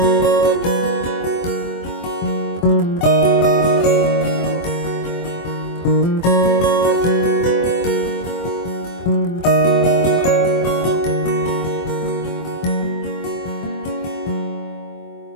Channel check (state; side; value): late; right; 24 ms